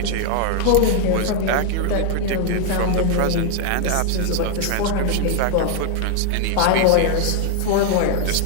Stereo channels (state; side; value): different; both; correlation 0.00